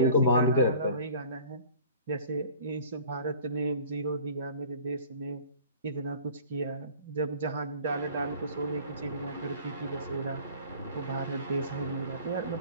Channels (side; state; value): both; inverted; correlation -0.46